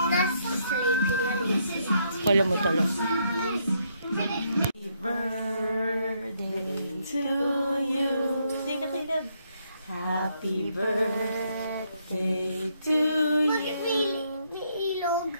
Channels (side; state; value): both; inverted; correlation -0.74